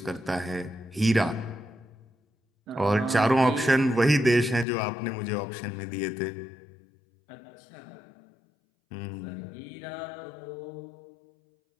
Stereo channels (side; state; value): right; drops out; at 4.7 s